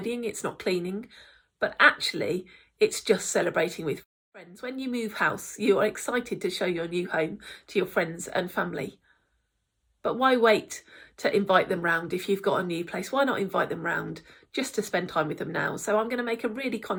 it's not cleaning, but actually it's just celebrating with friends. When you move house, you are excited to show your new home to your friends and family. But why wait to invite them round if you've got a new place? Why not invite them round just to spend time with them now? So I'm going to make a really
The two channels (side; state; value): both; identical; correlation 1.00